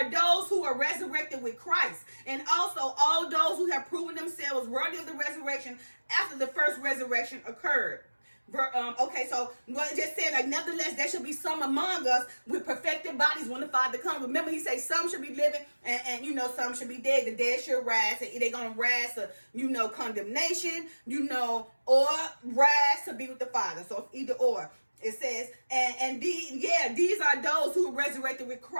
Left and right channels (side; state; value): both; inverted; correlation -1.00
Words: those who are resurrected with Christ, and also all those who have proven themselves worthy of the resurrection after the first resurrection occurred. Okay, so what it just said, like, nevertheless, there should be some among us with perfected bodies when the Father comes. Remember, he says some should be living and some should be dead. The dead should rise. They're going to rise to, condemnation, or rise to be with the Father. So it's either or. It says, these are those who are resurrected with